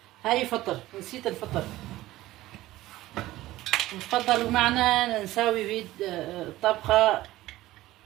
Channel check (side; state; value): left; quieter; 16.6 dB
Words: هاي فطر، نسيت الفطر. تفضلوا معنا نساوي طبخة